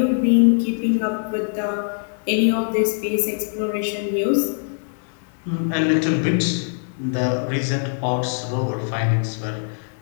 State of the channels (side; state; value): right; silent; 63 dB below the other